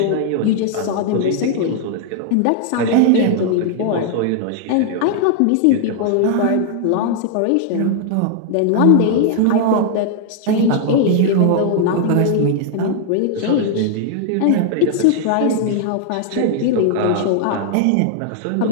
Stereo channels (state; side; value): different; both; correlation 0.00